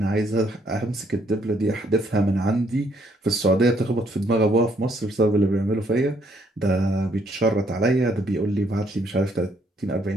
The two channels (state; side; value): normal; both; correlation 0.69